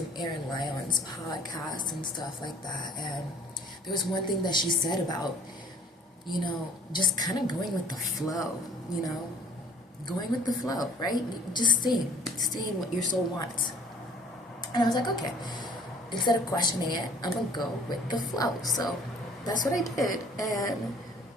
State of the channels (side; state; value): both; normal; correlation 0.54